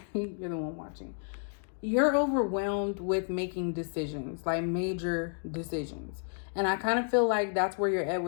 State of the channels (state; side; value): silent; right; 57 dB below the other